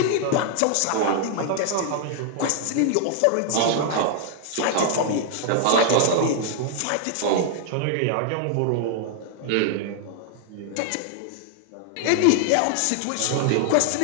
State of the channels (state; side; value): different; both; correlation 0.00